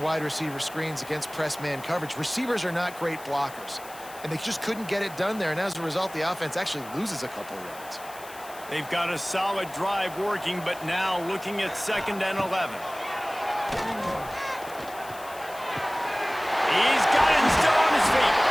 wide receiver screens against press man coverage. Receivers are not great blockers, and they just couldn't get it done there, and as a result, the offense actually loses a couple of yards. They've got a solid drive working, but now looking at 2nd and 11. He's got it still on his feet.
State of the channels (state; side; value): noise; left; hiss, 18 dB below the sound